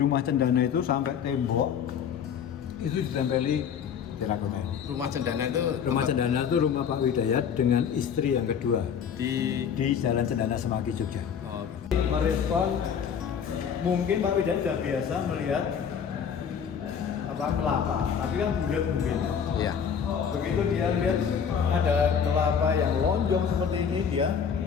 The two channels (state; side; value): quieter; right; 7.4 dB